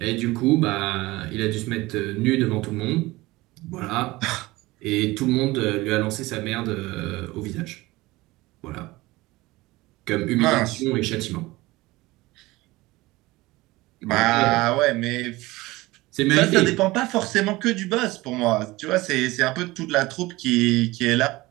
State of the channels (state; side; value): quieter; left; 20.1 dB